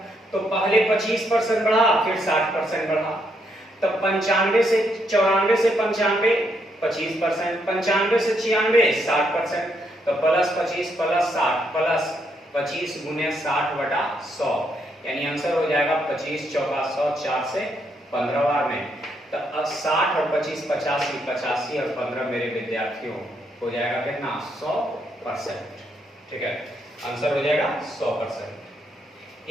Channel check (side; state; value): both; normal; correlation 0.76